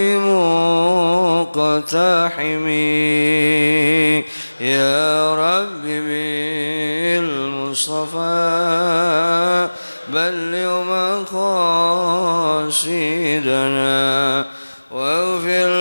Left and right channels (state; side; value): inverted; both; correlation -1.00